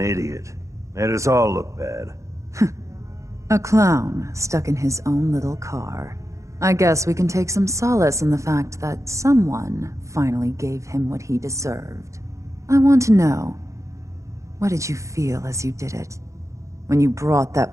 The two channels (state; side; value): late; left; 0.15 ms